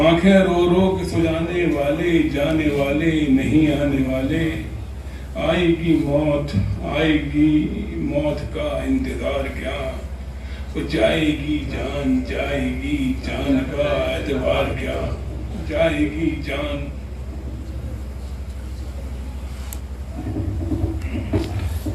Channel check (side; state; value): both; identical; correlation 1.00